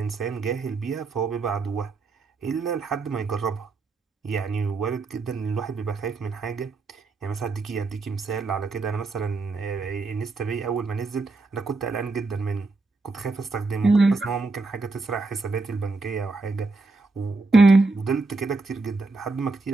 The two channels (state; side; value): quieter; left; 3.6 dB